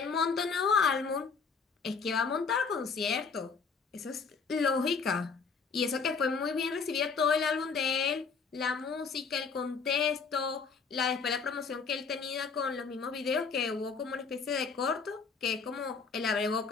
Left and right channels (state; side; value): quieter; right; 5.3 dB